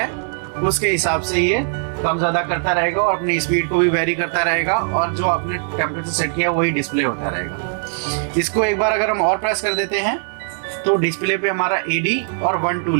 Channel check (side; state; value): left; silent; 66 dB below the other